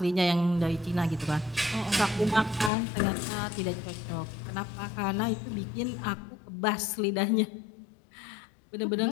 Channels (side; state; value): right; drops out; at 2.7 s